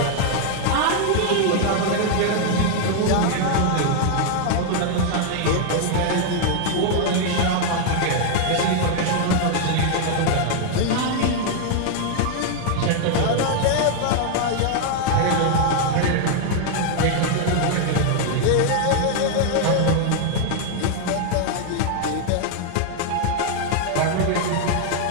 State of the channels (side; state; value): both; different; correlation 0.00